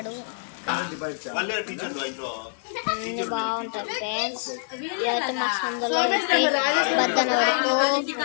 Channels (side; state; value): right; silent; 61 dB below the other